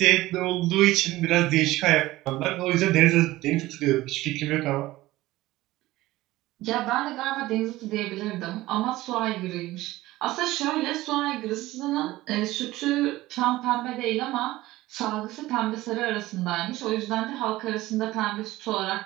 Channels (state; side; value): quieter; left; 17.5 dB